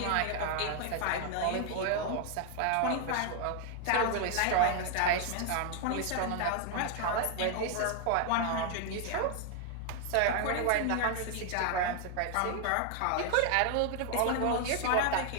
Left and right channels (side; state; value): both; different; correlation 0.00